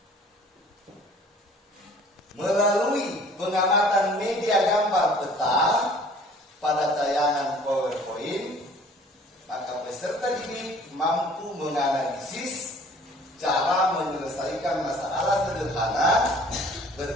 melalui pengamatan media gambar peta pada tayangan PowerPoint, maka peserta didik mampu menganalisis cara menyelesaikan masalah sederhana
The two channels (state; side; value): normal; both; correlation 0.52